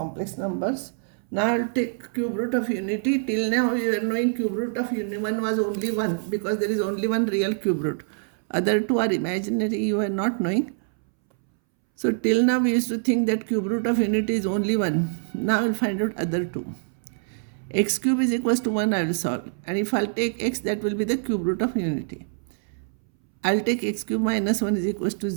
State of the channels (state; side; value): silent; left; 62 dB below the other